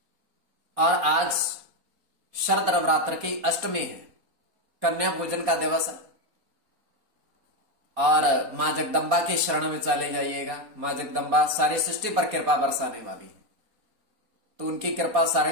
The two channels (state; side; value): late; left; 4.2 ms